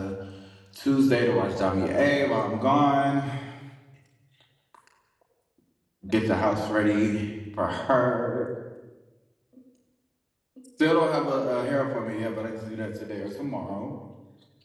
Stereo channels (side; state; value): both; identical; correlation 1.00